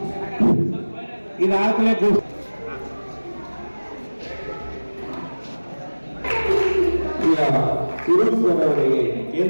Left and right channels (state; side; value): inverted; both; correlation -1.00